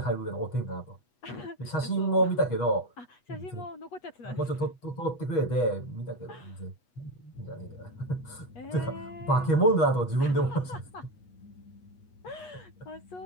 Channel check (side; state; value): right; late; 8.3 ms